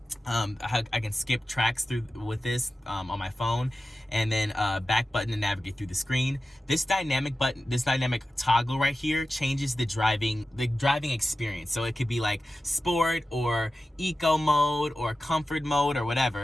I can skip tracks through with this on my phone, and then back button to navigate through the screen. This dynamic button, this dynamic toggle right here, changes the driving experience. So it could be like sport or eco mode or comfort mode or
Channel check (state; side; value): normal; both; correlation 0.94